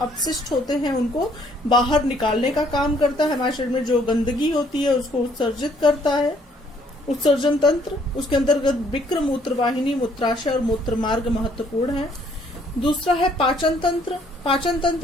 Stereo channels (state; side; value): normal; both; correlation 0.64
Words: होते हैं उनको बाहर निकालने का काम करता है। हमारे शरीर में जो गंदगी होती है उसको उत्सर्जित करता है उत्सर्जन तंत्र। उसके अंतर्गत वृक्क, मूत्र वाहिनी, मूत्राशय और मूत्र मार्ग महत्वपूर्ण है। दूसरा है पाचन तंत्र। पाचन